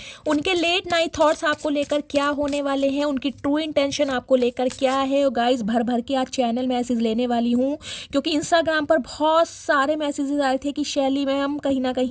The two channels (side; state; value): both; identical; correlation 1.00